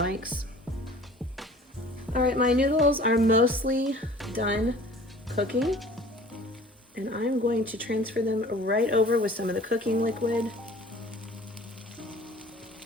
All right, my noodles are mostly done cooking, and I'm going to transfer them right over with some of the cooking liquid.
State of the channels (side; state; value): both; normal; correlation 0.47